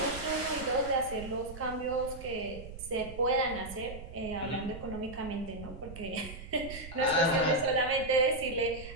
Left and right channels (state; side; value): noise; right; rumble, 12 dB below the sound